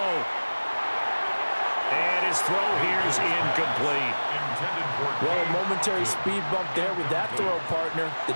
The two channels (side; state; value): both; inverted; correlation -1.00